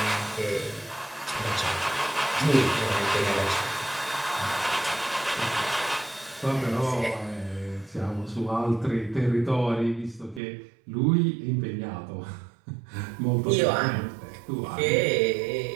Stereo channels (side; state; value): left; drops out; at 10.4 s